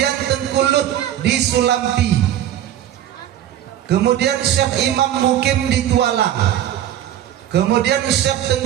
Tengku Lut di Sulampi. Kemudian Syekh Imam Mukim di Tualang. Kemudian Syekh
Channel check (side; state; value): left; quieter; 11.5 dB